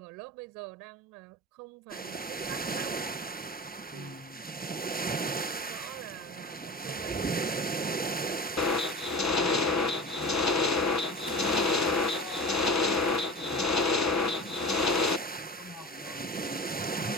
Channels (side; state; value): both; normal; correlation 0.33